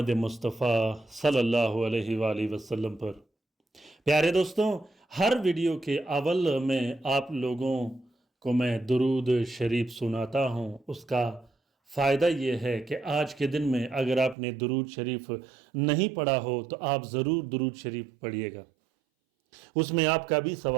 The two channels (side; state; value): left; drops out; at 14.4 s